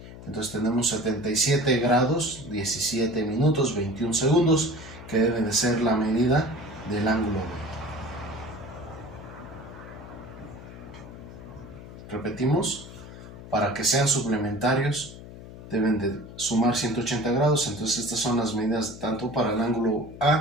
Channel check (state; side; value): noise; left; hum, 15 dB below the sound